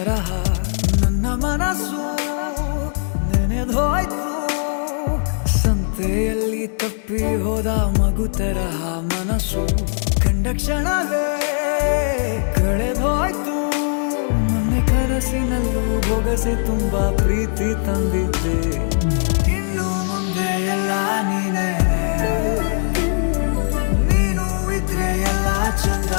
ನನ್ನ ಮನಸ್ಸು ನೆನೆದೋಯ್ತು. ಸಂತೆಯಲ್ಲಿ ತಪ್ಪಿ ಹೋದ ಮಗು ತರಹ ಮನಸ್ಸು ಕಂಡ ಕ್ಷಣವೇ ಕಳೆದೋಯ್ತು. ಮೊನ್ನೆ ಕನಸಿನಲ್ಲೂ ಬೊಗಸೆ ತುಂಬಾ ಪ್ರೀತಿ ತಂದಿದ್ದೆ. ಇನ್ನು ಮುಂದೆ ಎಲ್ಲ ನೀನೇ, ನೀನು ಇದ್ರೆ ಎಲ್ಲ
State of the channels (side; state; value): right; silent; digital silence